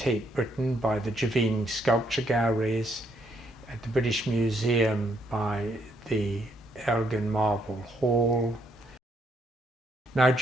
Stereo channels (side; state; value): both; normal; correlation 0.73